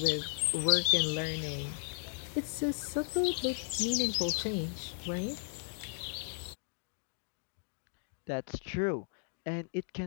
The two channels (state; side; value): silent; right; digital silence